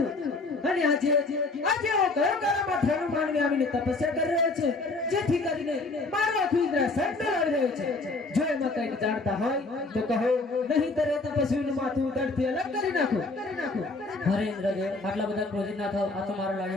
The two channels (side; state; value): right; quieter; 3.4 dB